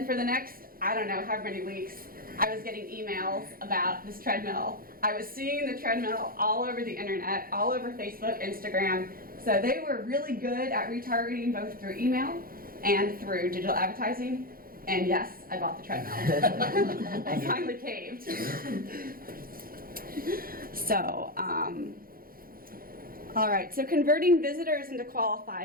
for the next, I don't know, however many weeks, I was getting emails about this treadmill. I was seeing the treadmill all over the internet, all over Facebook, Instagram. So they were really good at retargeting both through email and through digital advertising. And yes, I bought the treadmill. I finally caved. So, all right, so converting visitors into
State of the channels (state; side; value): late; left; 0.42 ms